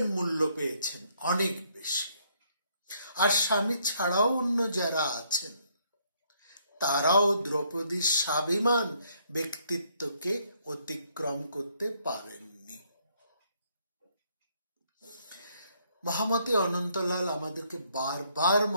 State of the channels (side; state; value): both; inverted; correlation -0.69